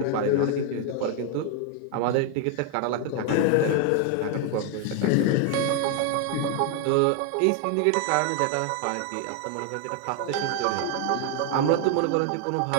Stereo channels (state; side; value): different; both; correlation 0.01